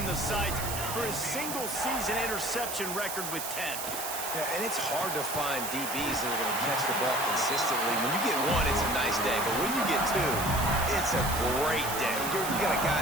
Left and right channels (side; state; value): right; noise; hiss, 5 dB below the sound